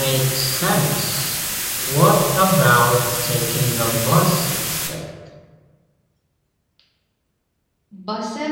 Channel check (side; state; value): both; identical; correlation 1.00